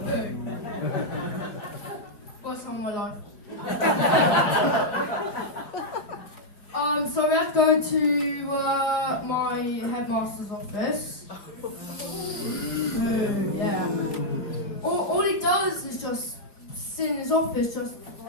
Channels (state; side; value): late; right; 4.8 ms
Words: boo. Worst time of my life. So we had to go to my headmaster's office. Boo, yeah. All he does is just sit in his office, just